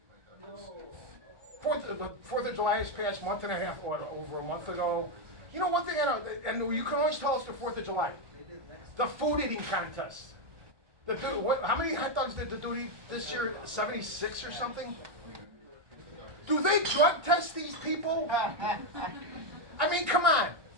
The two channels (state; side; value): late; left; 1.2 ms